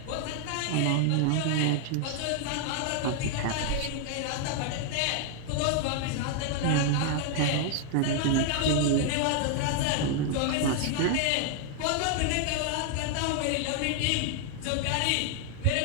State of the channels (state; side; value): different; both; correlation 0.00